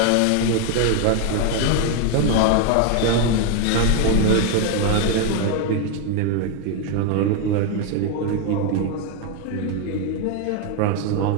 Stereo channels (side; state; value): both; different; correlation 0.01